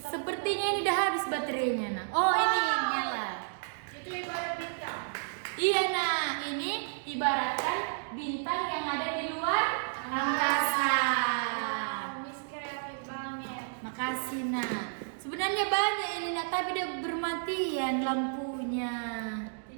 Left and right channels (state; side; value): silent; left; digital silence